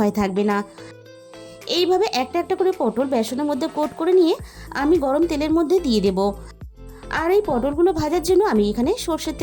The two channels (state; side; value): identical; both; correlation 1.00